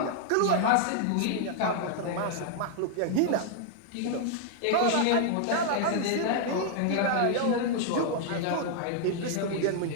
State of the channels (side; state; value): both; different; correlation -0.01